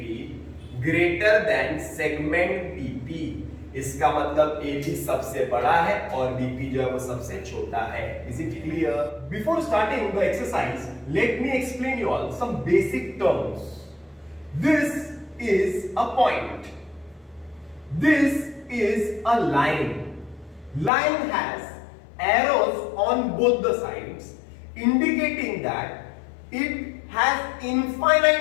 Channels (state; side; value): drops out; right; at 20.9 s